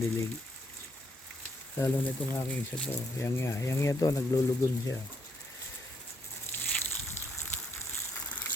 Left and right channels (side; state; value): both; normal; correlation 0.72